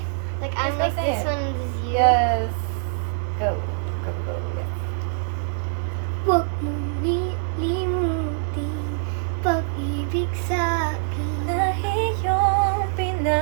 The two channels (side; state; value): left; silent; 63 dB below the other